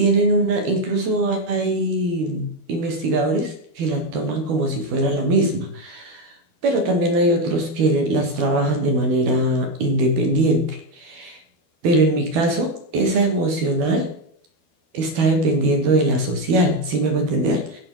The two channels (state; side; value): late; left; 12 ms